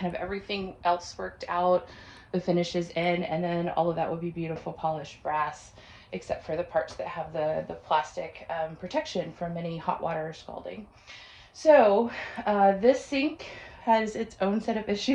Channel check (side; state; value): both; identical; correlation 1.00